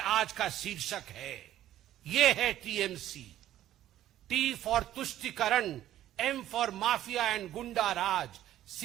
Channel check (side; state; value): left; quieter; 12.9 dB